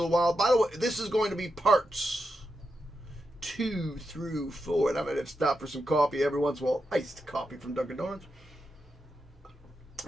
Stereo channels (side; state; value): both; normal; correlation 0.87